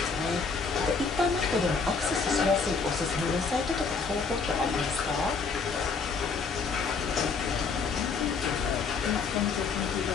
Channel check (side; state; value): right; quieter; 5.0 dB